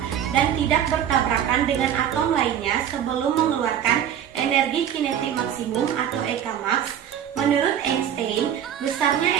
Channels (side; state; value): left; quieter; 9.7 dB